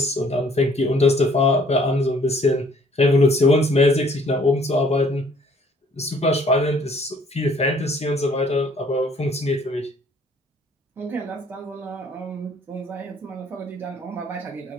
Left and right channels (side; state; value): both; normal; correlation 0.60